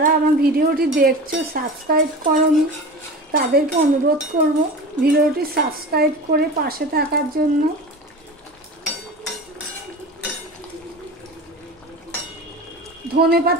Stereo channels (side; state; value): both; normal; correlation 0.33